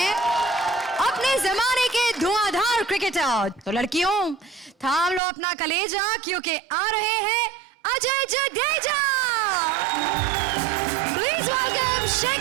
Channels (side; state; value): left; drops out; at 5.2 s